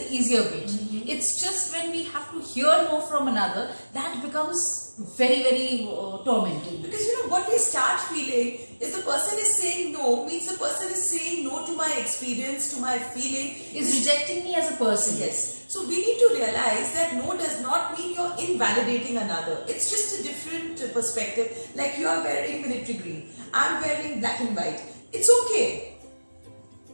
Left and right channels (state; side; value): inverted; both; correlation -1.00